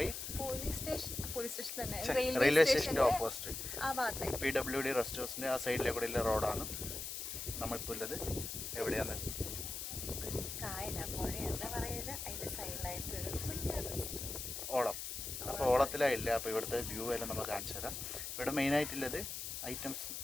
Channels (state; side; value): noise; left; hiss, 5 dB below the sound